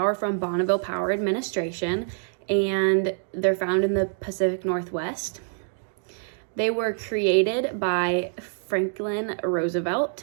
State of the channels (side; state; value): left; silent; 61 dB below the other